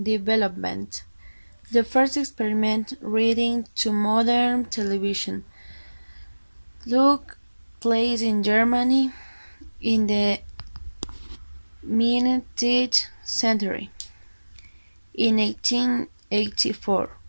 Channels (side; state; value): both; inverted; correlation -1.00